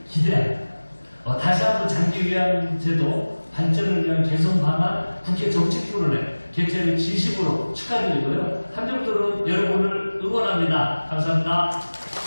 기대합니다. 다시 한번 장기 요양 제도 발전을 위한 개선 방안 국회 정책 토론회 개최를 진심으로 축하드리고요. 한정도로 여러분을 응원합니다. 감사합니다.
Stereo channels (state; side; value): inverted; both; correlation -1.00